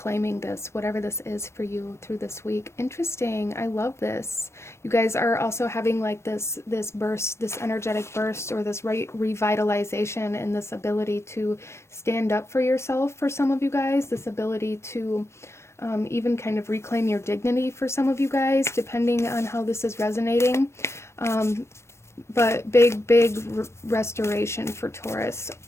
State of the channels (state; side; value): late; right; 0.13 ms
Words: this, whatever this is for you through this week. Interesting. I love this. You guys are also having like this burst, this energetic burst, or this revitalization, and this ability to stand up for yourself for some of you guys, this ability to even kind of reclaim your dignity for some of you guys, depending on how this is resonating. But big restoration for Taurus